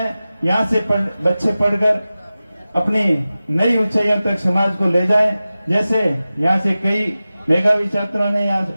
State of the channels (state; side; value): inverted; both; correlation -0.95